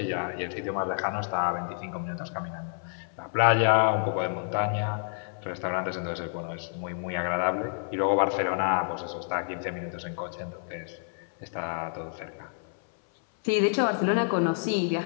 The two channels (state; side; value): silent; right; 59 dB below the other